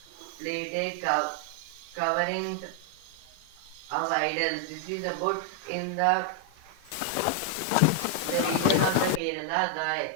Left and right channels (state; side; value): different; both; correlation 0.00